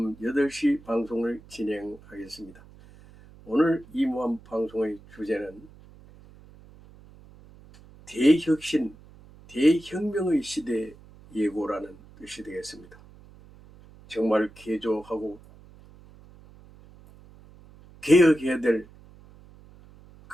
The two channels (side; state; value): right; noise; hum, 23 dB below the sound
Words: 8시 방송을 진행하겠습니다. 오늘 이무한 방송의 주제는 대혁신, 대혁명의 시대 예고라는 것이 되겠습니다. 정말 개조하고 개혁해야 될